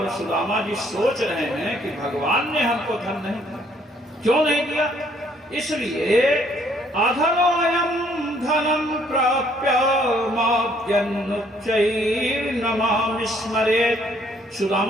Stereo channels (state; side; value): normal; both; correlation 0.65